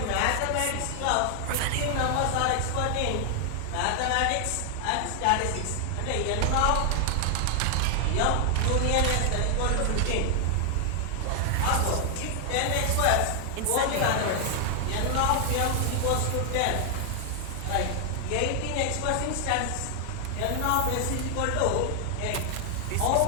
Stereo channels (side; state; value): both; different; correlation 0.00